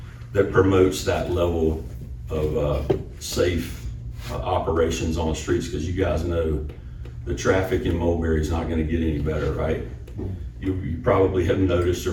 that promotes that level of safe operations on the streets, because you guys know the traffic in Mulberry is not going to get any better, right? You probably have noticed, or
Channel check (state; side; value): identical; both; correlation 1.00